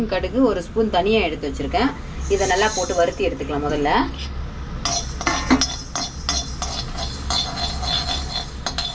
கடுகு, 1 ஸ்பூன் தனியாக எடுத்து வச்சுருக்கேன். இதை நல்லா போட்டு வறுத்தி எடுத்துக்கலாம் முதல்ல.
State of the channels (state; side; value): identical; both; correlation 1.00